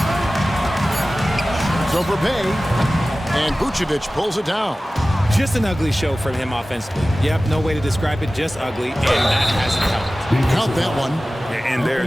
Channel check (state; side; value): normal; both; correlation 0.96